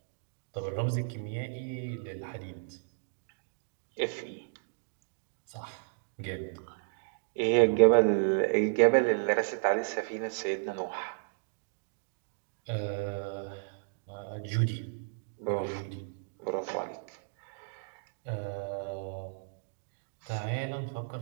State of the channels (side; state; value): left; silent; digital silence